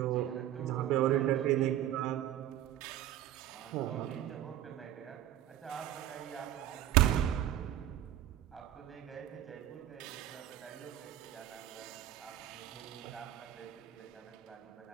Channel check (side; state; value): left; quieter; 12.5 dB